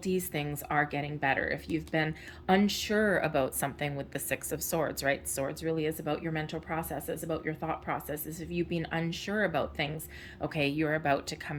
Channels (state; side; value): identical; both; correlation 1.00